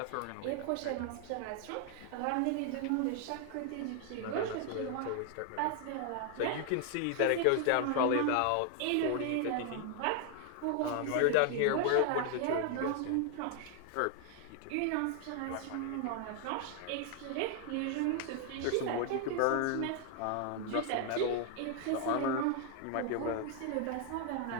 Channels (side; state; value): both; different; correlation 0.00